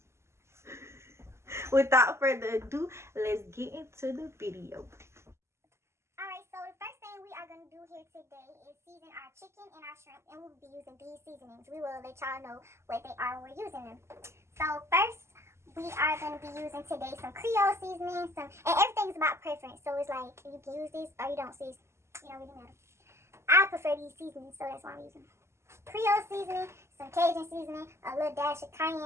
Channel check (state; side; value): late; left; 0.13 ms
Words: Without further ado, let's get into the video. Alright, so the first thing we are going to do here today is season our chicken and our shrimp, and we'll be using these seasonings. We will let y'all know what they are when we're using them. So first, we are going to be using today some Creole seasoning, and everything's about preference. So it's like, you can use this or you don't see. It don't really matter. I prefer these seasonings, so that's why I'm using them. Creole seasoning, some Cajun seasoning, a little dash of